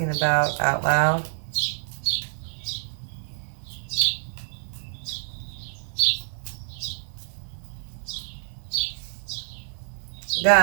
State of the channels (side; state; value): left; silent; digital silence